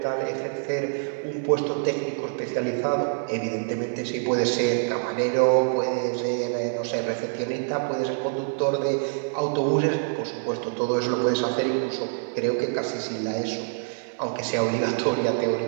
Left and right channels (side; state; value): left; silent; 56 dB below the other